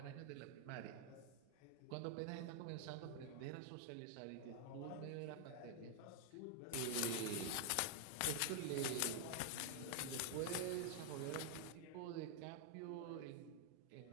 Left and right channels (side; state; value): both; different; correlation 0.00